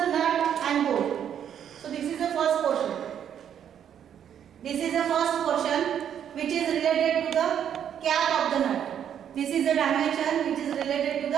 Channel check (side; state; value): left; quieter; 9.2 dB